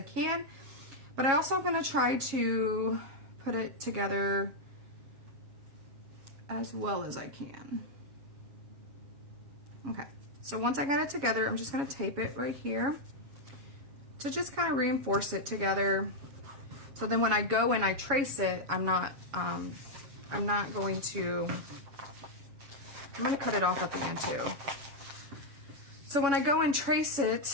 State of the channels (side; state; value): left; late; 7.2 ms